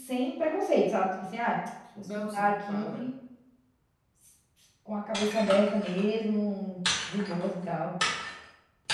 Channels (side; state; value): both; identical; correlation 1.00